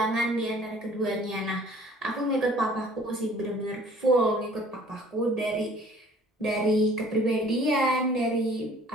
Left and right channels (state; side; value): normal; both; correlation 0.53